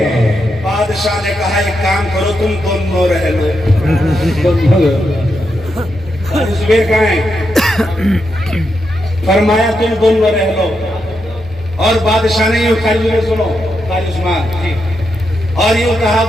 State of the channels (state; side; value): normal; both; correlation 0.84